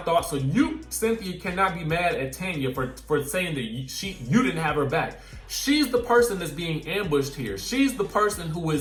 So you, Cynthia, cannot be mad at Tanya for saying that you didn't have her back. She's the person that's being ambushed here. She's the person who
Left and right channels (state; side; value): identical; both; correlation 1.00